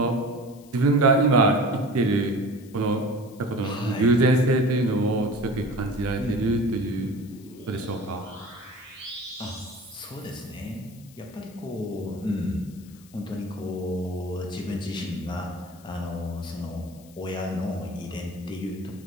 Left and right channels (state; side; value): noise; left; hiss, 25 dB below the sound